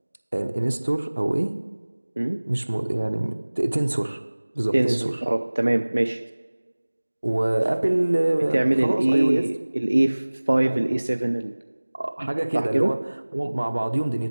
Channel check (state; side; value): inverted; both; correlation -1.00